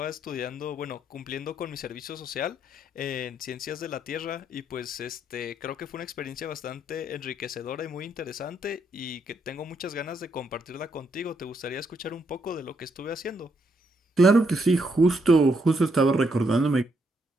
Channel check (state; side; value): normal; both; correlation 0.75